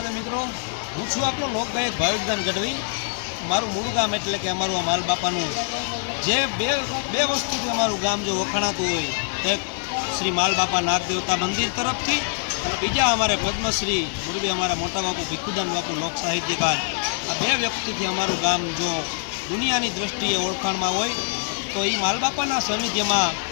मित्रों, हूँ छूँ आपनो लोकगायक भाविकदान गढ़वी। मारू मूळ गाम एटले के अमारू माल बापानु जे बे वस्तुथी अमारू गाम जो वखाणातुं होय ते श्री माल बापा नागदेवता मंदिर तरफथी अने बीजा अमारे पद्मश्री मुरबी अमारा मोटा बापू भिखुदान बापू लोक साहित्यकार आ बे व्यक्तिथी अमारू गाम जो दुनियानी दृष्टिए ओळखाणमां होय तो ई माल बापाना सानिध्यमां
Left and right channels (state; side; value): silent; right; digital silence